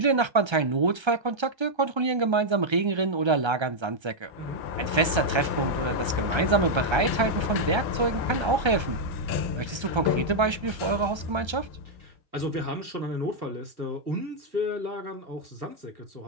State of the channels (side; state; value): left; late; 1.3 ms